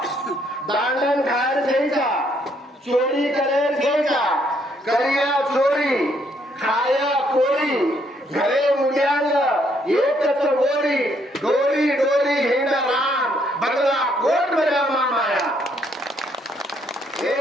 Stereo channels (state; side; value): normal; both; correlation 0.70